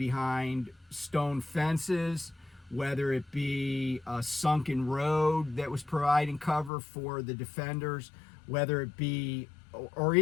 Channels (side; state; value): right; drops out; at 6.7 s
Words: stone fences, whether it be a sunken road that was providing cover for the defenders, whether it be, or